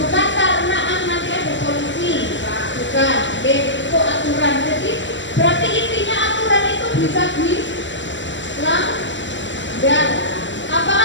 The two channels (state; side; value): late; right; 0.54 ms